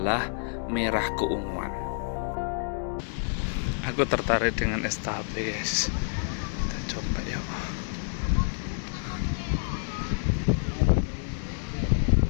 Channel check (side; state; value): right; silent; digital silence